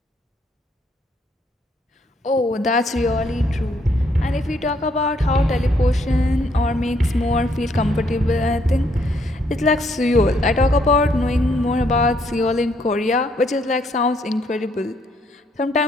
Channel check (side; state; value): both; normal; correlation 0.70